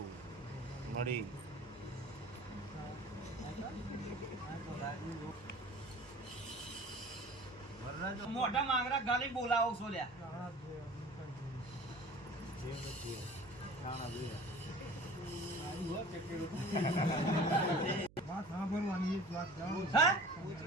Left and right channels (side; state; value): right; noise; hum, 23 dB below the sound